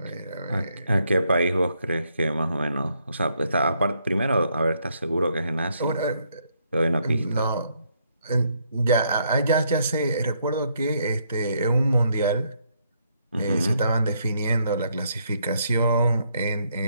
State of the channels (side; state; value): both; inverted; correlation -0.73